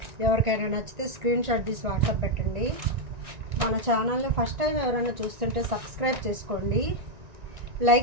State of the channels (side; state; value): left; late; 1.9 ms